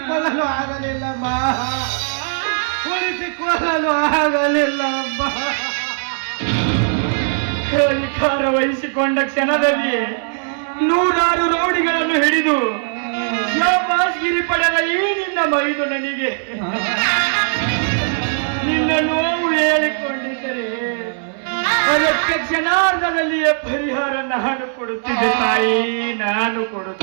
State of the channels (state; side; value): silent; left; digital silence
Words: ಆಗಲಿಲ್ಲಮ್ಮ. ಉಳಿಸಿಕೊಳ್ಳಲು ಆಗಲಿಲ್ಲಮ್ಮ. ಅಧಿಕಾರ ವಹಿಸಿಕೊಂಡ ಕ್ಷಣದಲ್ಲಿ 100 ರೌಡಿಗಳನ್ನು ಹಿಡಿದು ಶಾಬಾಸ್ಗಿರಿ ಪಡೆದ ಈ ನಿನ್ನ ಮೈದು ನನಗೆ ನಿನ್ನ ನೋವು ಹೇಳಿಕೊಂಡಿದ್ದರೆ ಅದಕ್ಕೆ ಕ್ಷಣಾರ್ಧದಲ್ಲಿಯೇ ಪರಿಹಾರ ನಾನು ಕೊಡುತ್ತಿದ್ದೆ ತಾಯಿ, ನಾನು